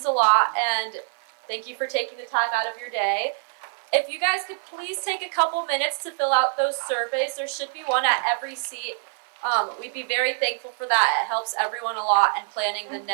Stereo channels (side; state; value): left; silent; 55 dB below the other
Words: a lot, and thank you for taking the time out of your day. If you guys could please take a couple minutes to fill out those surveys, there should be one at every seat. We'd be very thankful for that. It helps everyone a lot in planning the